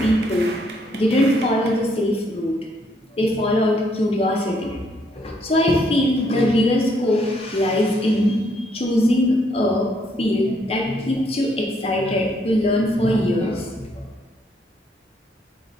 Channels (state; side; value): normal; both; correlation 0.71